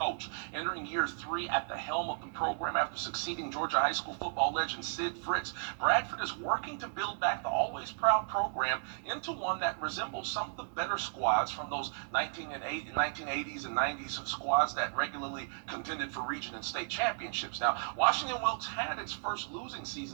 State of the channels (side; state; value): left; silent; digital silence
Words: Entering year 3 at the helm of the program after succeeding Georgia high school football legend Sid Fritz, Bradford is working to build back the always proud program into one that resembles some of the better squads from those 1980s and 90s squads that regularly contended for region and state championships. Now, Washington Wilkes had its first losing